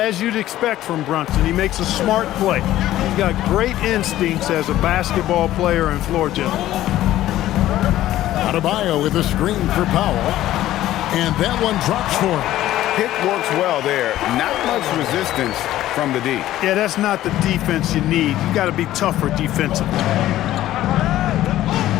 you'd expect from Brunson, he makes a smart play. He's got great instincts as a basketball player and floor general. Adebayo with a screen for Powell. And that one drops for him. Pick works well there. Not much resistance from the D. Yeah, that's not the defense you need. You got to be tougher defensively.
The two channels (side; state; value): right; quieter; 14.1 dB